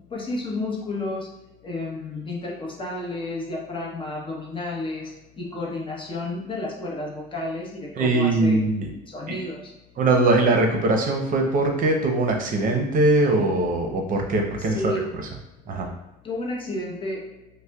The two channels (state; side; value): noise; left; hum, 29 dB below the sound